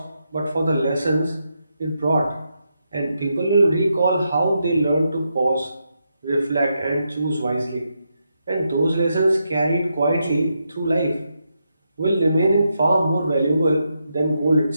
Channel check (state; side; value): inverted; both; correlation -0.83